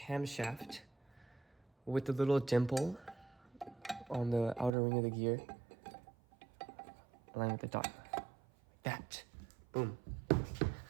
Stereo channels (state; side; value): drops out; left; at 4.7 s